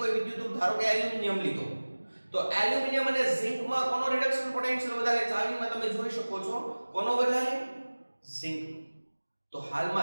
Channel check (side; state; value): both; inverted; correlation -1.00